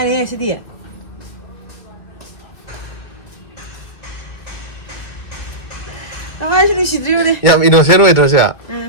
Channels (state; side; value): late; right; 2.3 ms